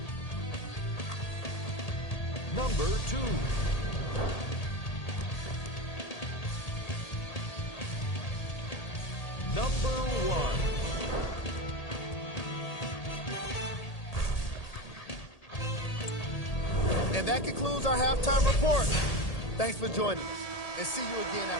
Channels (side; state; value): right; late; 1.8 ms